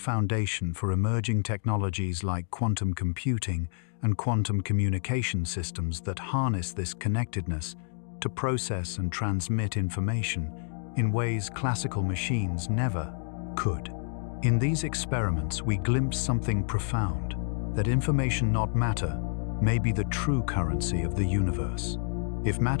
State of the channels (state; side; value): silent; right; digital silence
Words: for emerging technologies like quantum computing and quantum communication systems that harness this connectedness to process and transmit information in ways classical machines never could. In these experiments, we glimpse something profound: that information, not matter, may be the true currency of the universe. If